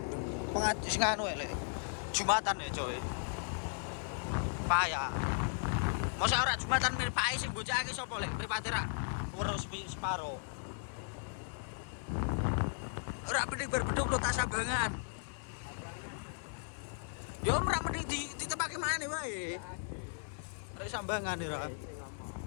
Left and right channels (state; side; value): silent; right; digital silence